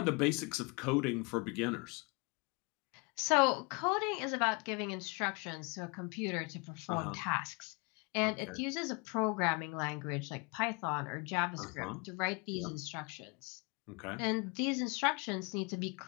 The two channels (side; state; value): right; quieter; 30.8 dB